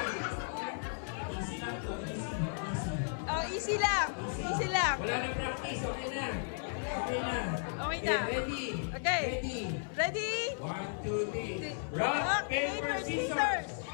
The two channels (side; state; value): right; silent; 55 dB below the other